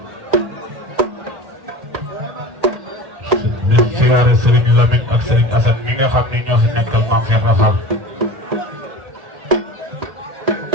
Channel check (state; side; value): late; left; 1.8 ms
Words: di ziyaare Serigne Lamine ak Serigne Assane mi nga xam ni ñoo fi nekkal Mame Cheikh Rafal